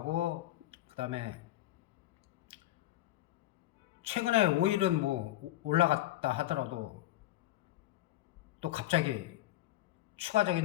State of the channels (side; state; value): right; quieter; 15.2 dB